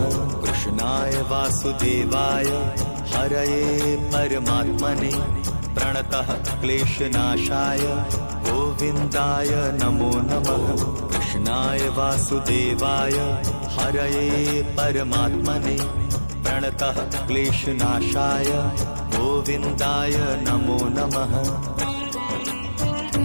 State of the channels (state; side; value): inverted; both; correlation -1.00